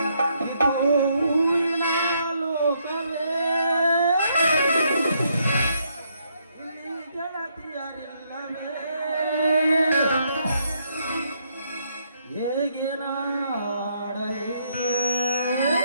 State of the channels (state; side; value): inverted; both; correlation -0.74